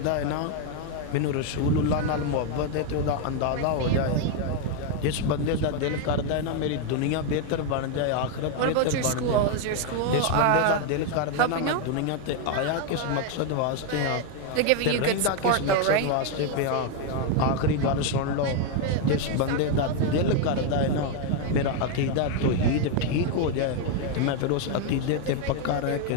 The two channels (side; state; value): both; different; correlation 0.01